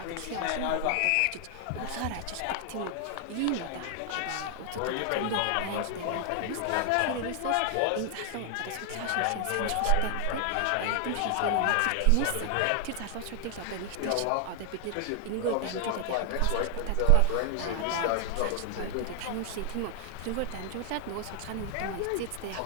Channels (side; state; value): both; different; correlation 0.01